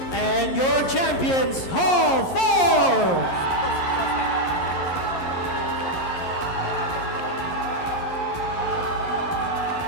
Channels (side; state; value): right; late; 11 ms